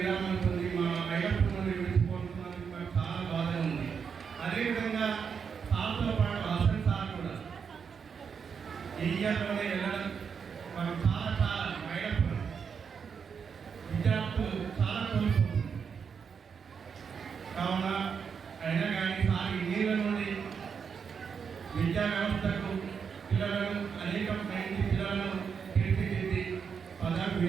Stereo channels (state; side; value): quieter; left; 6.4 dB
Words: పొంది మా ఐలప్పన్ నుండి విడిచిపోతున్నందుకు మాకు చాలా బాధ ఉంది. అదేవిధంగా సార్తో పాటు హసన్ సార్ కూడా ఇయర్లోనే వెళ్ళడం మనం చాలా మైనప్పుడు విద్యార్థులు చాలా కోల్పోతుంది. కావున అయినా కానీ సార్ నీళ్ళ నుండి విద్యా వ్యవస్థకు పిల్లలను అనేక మంది పిల్లలను తీర్చిదిద్ది పదవి